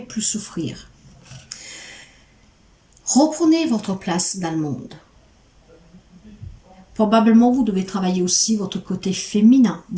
souffrir. Reprenez votre place dans le monde. Probablement, vous devez travailler aussi votre côté féminin.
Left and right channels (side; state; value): both; identical; correlation 1.00